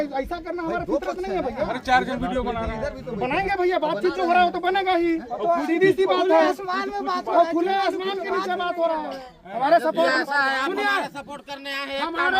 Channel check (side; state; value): both; identical; correlation 1.00